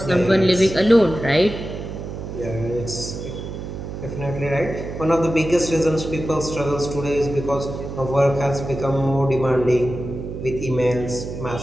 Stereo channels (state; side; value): noise; right; hum, 8 dB below the sound